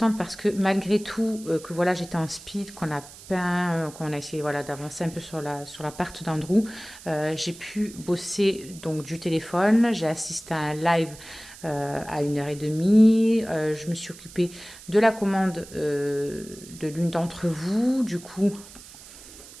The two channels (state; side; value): noise; right; hiss, 18 dB below the sound